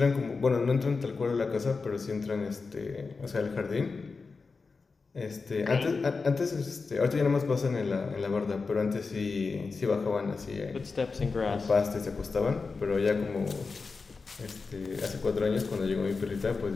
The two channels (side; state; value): right; quieter; 4.4 dB